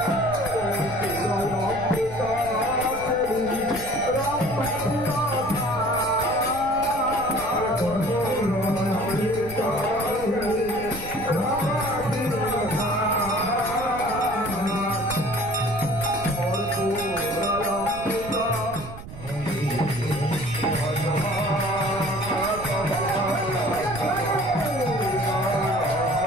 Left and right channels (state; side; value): noise; right; rumble, 13 dB below the sound